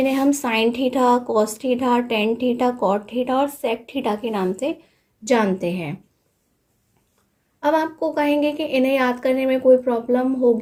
हम sine theta, cos theta, tan theta, cot theta और सेक थीटा के नाम से जानते हैं। अब आपको कहेंगे कि इन्हें याद करने में कोई प्रॉब्लम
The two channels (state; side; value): identical; both; correlation 1.00